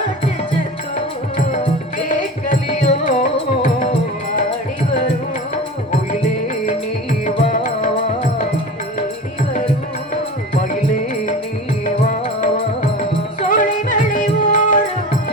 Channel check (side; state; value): both; normal; correlation 0.33